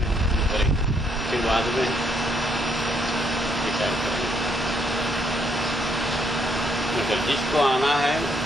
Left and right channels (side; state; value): both; normal; correlation 0.72